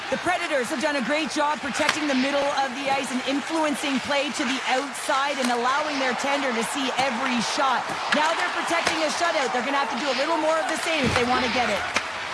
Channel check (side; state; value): both; identical; correlation 1.00